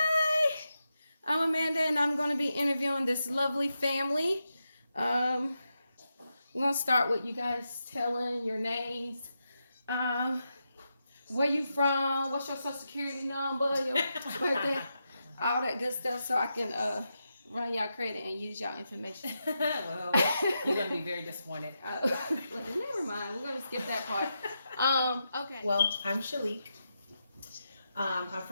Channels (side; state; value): both; inverted; correlation -0.87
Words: I'm Amanda, and I'm going to be interviewing this lovely family. Um, we're going to start with you guys telling your names, um, where you from, what's your social security number, your birthday, all that good stuff, so I can run y'all credit and use y'all information. Well, you're gonna be very disappointed. Never mind, we're going to skip that part. Okay. Well, I'm Shalik. I'm